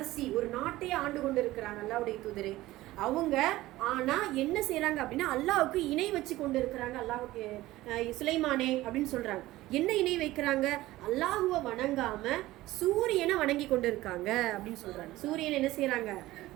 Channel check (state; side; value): quieter; left; 17.1 dB